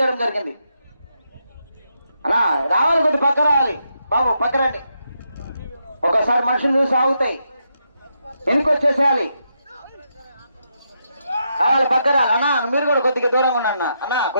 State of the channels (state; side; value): inverted; both; correlation -0.81